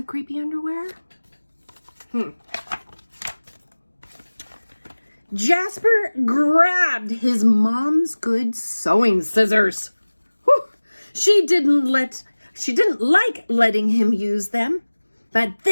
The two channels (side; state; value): both; inverted; correlation -1.00